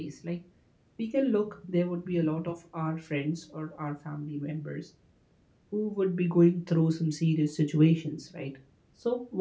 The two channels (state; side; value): identical; both; correlation 1.00